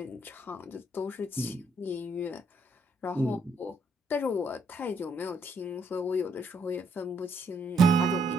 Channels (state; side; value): normal; both; correlation 0.72